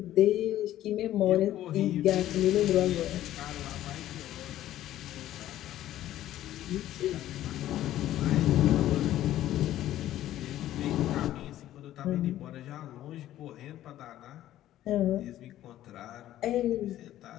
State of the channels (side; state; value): right; quieter; 13.3 dB